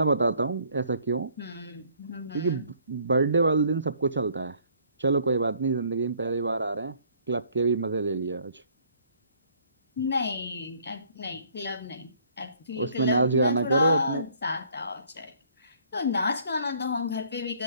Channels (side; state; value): both; inverted; correlation -0.60